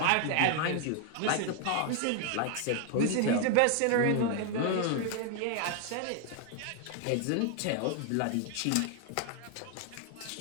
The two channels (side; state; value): both; different; correlation 0.00